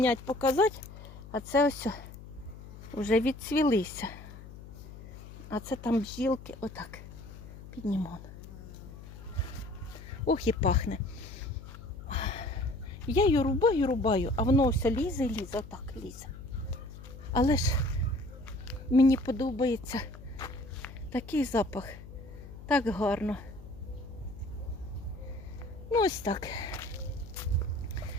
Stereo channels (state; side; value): noise; left; hum, 15 dB below the sound